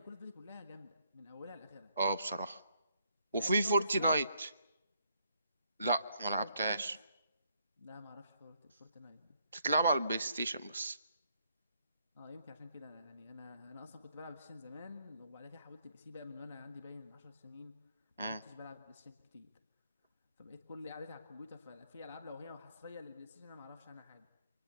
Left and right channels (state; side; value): inverted; both; correlation -0.72